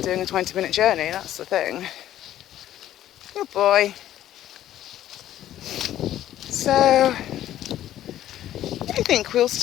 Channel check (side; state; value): right; quieter; 12.5 dB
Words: doing a 20-minute journey, that's the thing. Good boy. So, I think we'll